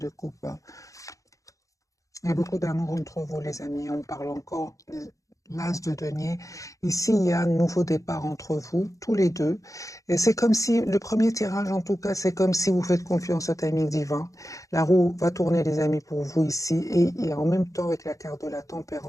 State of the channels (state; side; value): late; right; 0.16 ms